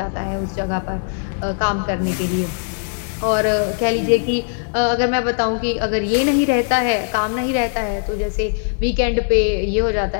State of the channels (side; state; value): right; silent; digital silence